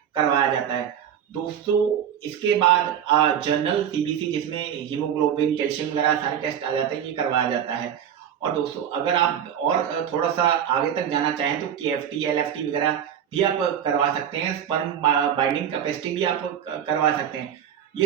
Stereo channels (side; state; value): left; quieter; 9.2 dB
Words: करवाया जाता है। दोस्तों इसके बाद जनरल सीबीसी जिसमें हीमोग्लोबिन, कैल्शियम वगैरह सारे टेस्ट आ जाते हैं, ये करवाया जाता है। और दोस्तों अगर आप और थोड़ा सा आगे तक जाना चाहें तो केएफटी, एलएफटी वगैरह भी आप करवा सकते हैं। स्पर्म बाइंडिंग कैपेसिटी भी आप करवा सकते हैं।